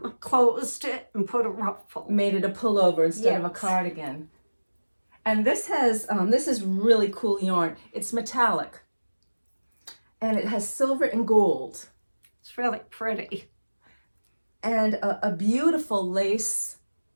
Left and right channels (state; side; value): inverted; both; correlation -1.00